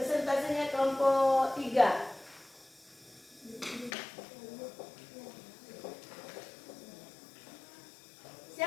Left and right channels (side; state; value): right; drops out; at 3.9 s